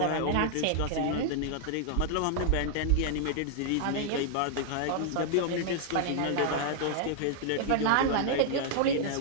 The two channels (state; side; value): different; both; correlation 0.00